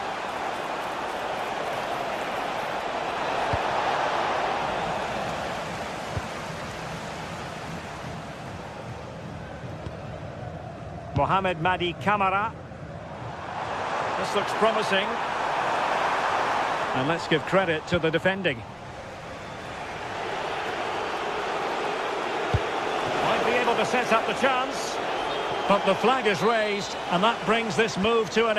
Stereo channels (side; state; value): both; identical; correlation 1.00